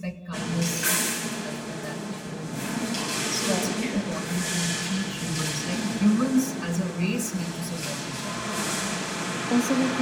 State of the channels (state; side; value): identical; both; correlation 1.00